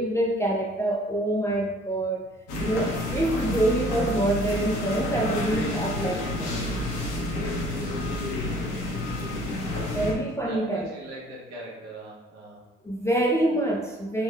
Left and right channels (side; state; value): both; normal; correlation 0.56